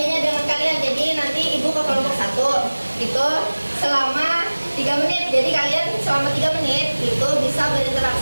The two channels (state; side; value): inverted; both; correlation -1.00